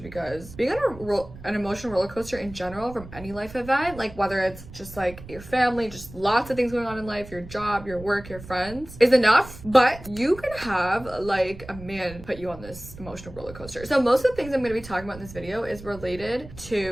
because being on an emotional roller coaster in general from any life event, like whether it's just like your family, just lots of things going on in life, your job, your work, your friends, is enough. But you can have like a man put you on this emotional roller coaster. So most of the things I'm going to be talking about in this video is related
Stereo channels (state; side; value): noise; right; rumble, 16 dB below the sound